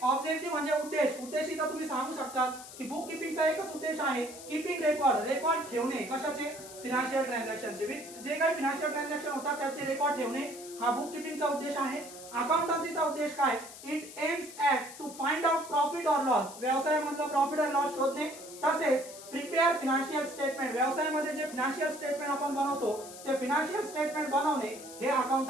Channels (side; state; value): left; noise; hiss, 15 dB below the sound